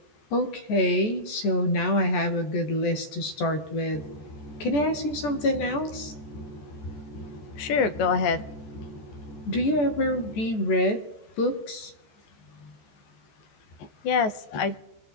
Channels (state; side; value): late; right; 14 ms